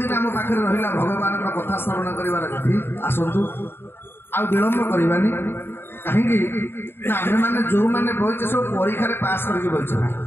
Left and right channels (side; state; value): right; late; 0.11 ms